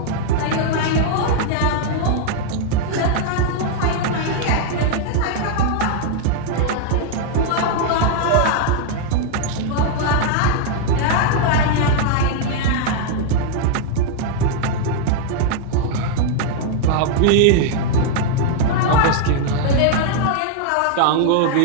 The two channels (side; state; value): both; different; correlation 0.00